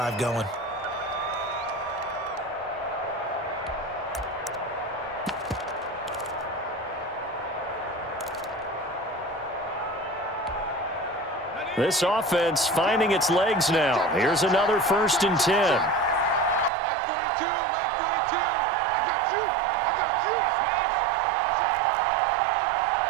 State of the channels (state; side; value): drops out; left; at 16.7 s